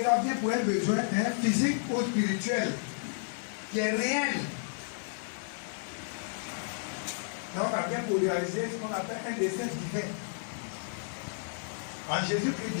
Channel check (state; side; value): silent; right; digital silence